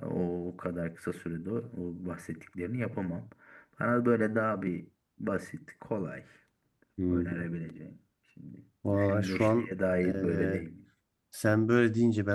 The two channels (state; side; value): identical; both; correlation 1.00